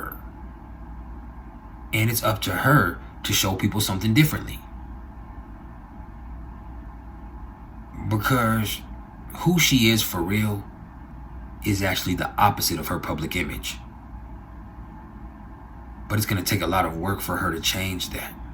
And it's up to her to show people something differently. Because who she is for real is actually the opposite of her public image. But it's going to take a lot of work for her to change that.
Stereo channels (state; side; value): identical; both; correlation 1.00